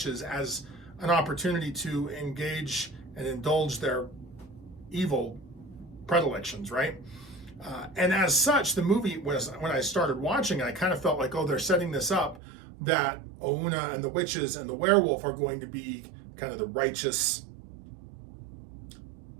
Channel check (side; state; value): left; drops out; at 12.4 s